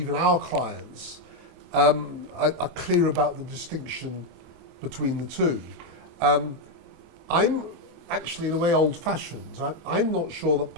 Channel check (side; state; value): left; late; 25 ms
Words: our clients are clear about the distinction between the two. I'm actually, in a way, old-fashioned. I'm not sure that